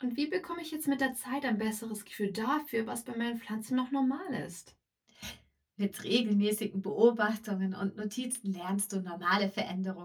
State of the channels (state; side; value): identical; both; correlation 1.00